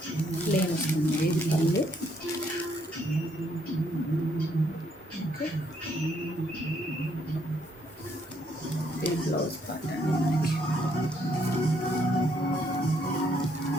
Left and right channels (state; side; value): normal; both; correlation 0.71